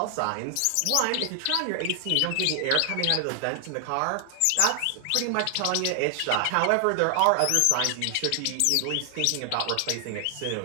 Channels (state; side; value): different; both; correlation 0.00